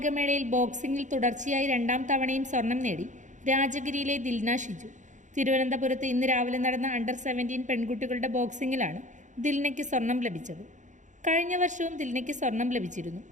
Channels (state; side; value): late; left; 0.36 ms